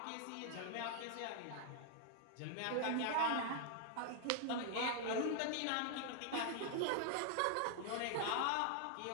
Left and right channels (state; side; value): different; both; correlation 0.00